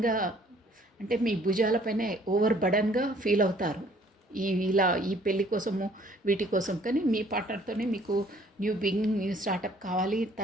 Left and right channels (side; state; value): both; normal; correlation 0.59